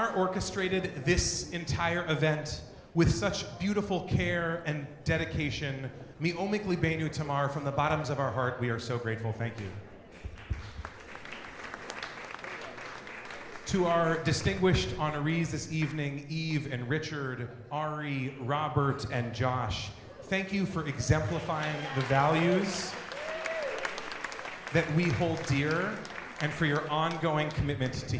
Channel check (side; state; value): both; identical; correlation 1.00